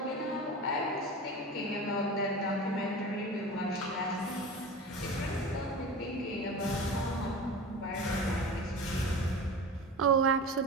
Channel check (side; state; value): both; normal; correlation 0.32